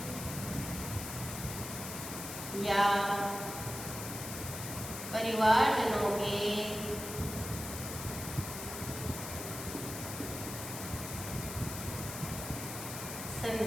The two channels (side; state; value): left; noise; hiss, 7 dB below the sound